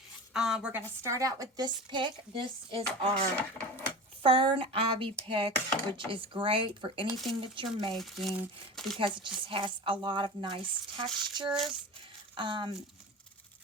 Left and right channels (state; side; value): normal; both; correlation 0.32